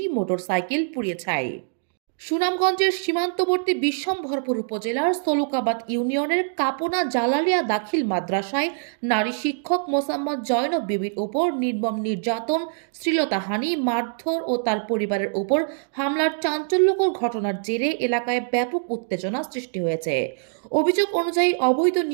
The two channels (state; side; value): silent; left; digital silence